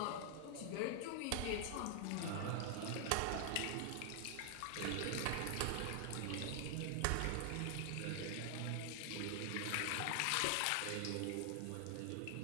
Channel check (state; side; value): different; both; correlation 0.00